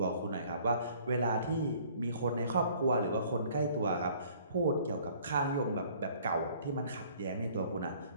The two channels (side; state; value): both; inverted; correlation -0.56